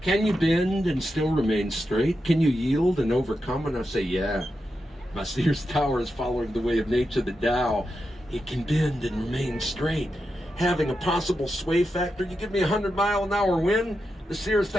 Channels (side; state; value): both; normal; correlation 0.88